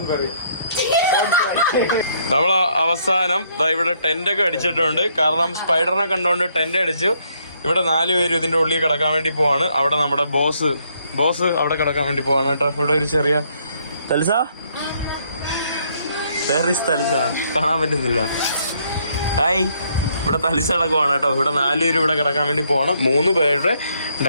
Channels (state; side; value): inverted; both; correlation -0.70